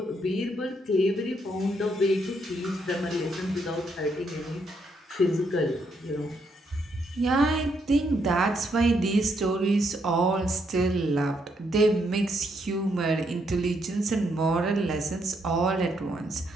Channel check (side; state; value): both; normal; correlation 0.75